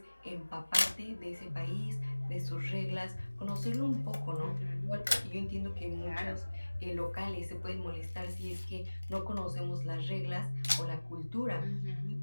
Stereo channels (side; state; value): both; inverted; correlation -1.00